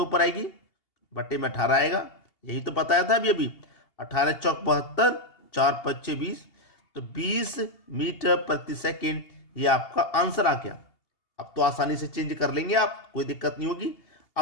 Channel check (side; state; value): right; late; 2.8 ms